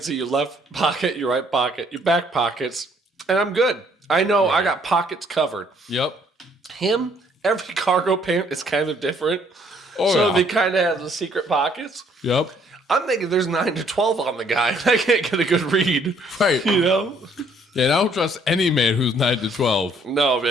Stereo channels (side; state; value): both; normal; correlation 0.64